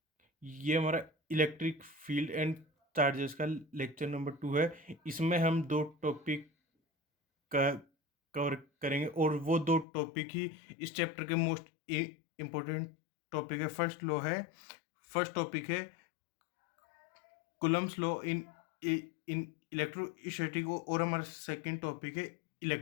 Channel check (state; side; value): drops out; right; at 9.9 s